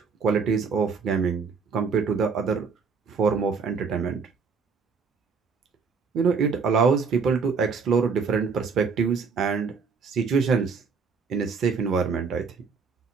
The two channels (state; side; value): quieter; left; 5.4 dB